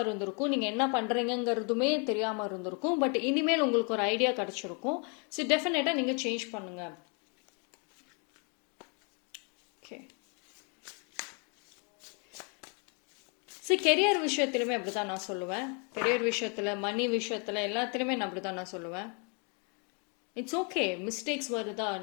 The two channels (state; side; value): quieter; right; 36.4 dB